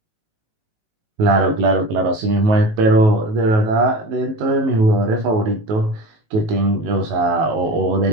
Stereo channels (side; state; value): left; late; 19 ms